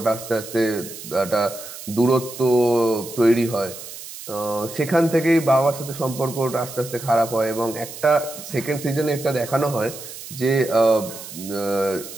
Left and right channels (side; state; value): right; noise; hiss, 13 dB below the sound